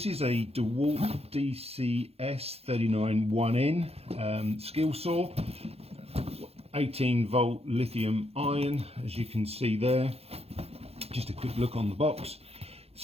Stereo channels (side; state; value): left; late; 0.29 ms